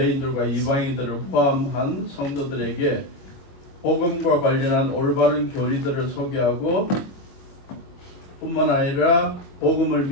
이방인들을 포함한 성도들에게 복음과 관련한 올바른 교리들을 소개하고 뿐만 아니라 복음을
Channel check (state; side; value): late; right; 22 ms